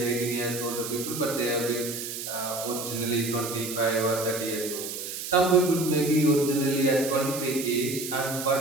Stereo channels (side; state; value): right; noise; hiss, 7 dB below the sound